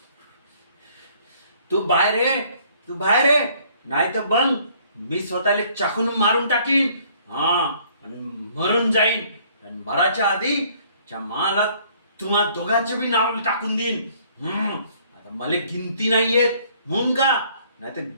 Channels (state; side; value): inverted; both; correlation -0.60